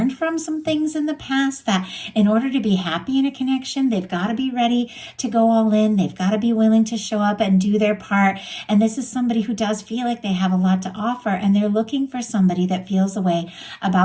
from some things in the past that in order to be happy in a connection, they've got to be ready to go all in. They've got to be willing to show up and do their part. And this is somebody who does feel like they have a lot to offer, and they're looking for somebody that feels a way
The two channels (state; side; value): identical; both; correlation 1.00